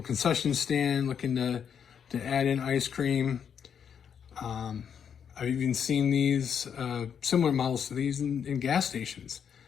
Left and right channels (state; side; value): quieter; right; 7.7 dB